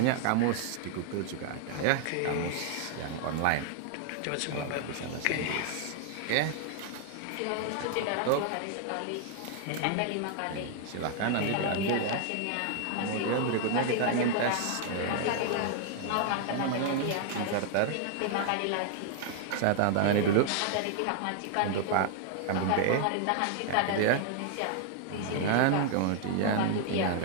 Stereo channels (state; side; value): different; both; correlation 0.00